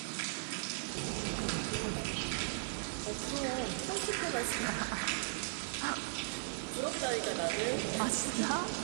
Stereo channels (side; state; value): left; silent; digital silence